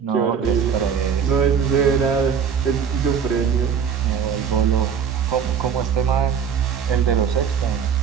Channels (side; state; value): left; quieter; 7.3 dB